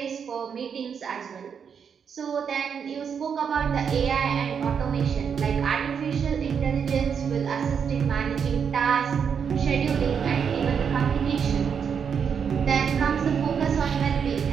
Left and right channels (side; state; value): left; quieter; 7.0 dB